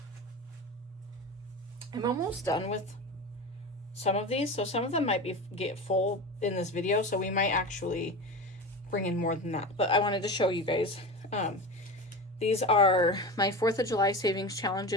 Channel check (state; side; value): normal; both; correlation 0.27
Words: I'm almost done with some of these, so some of them might get full in this video, so we might actually bring in more than that. But I wanted to show you guys. These are my 4th of July savings